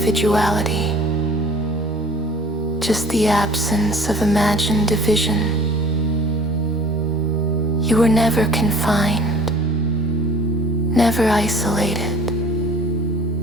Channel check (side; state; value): both; normal; correlation 0.48